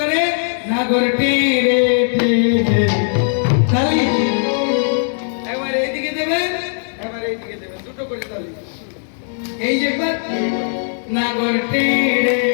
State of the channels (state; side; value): silent; right; 67 dB below the other